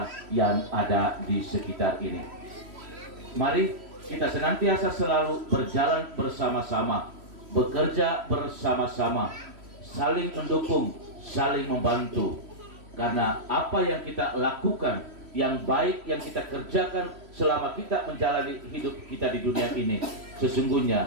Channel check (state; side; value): late; left; 3.1 ms